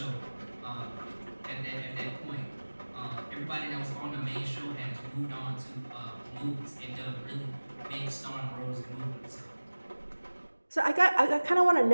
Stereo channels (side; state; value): both; inverted; correlation -1.00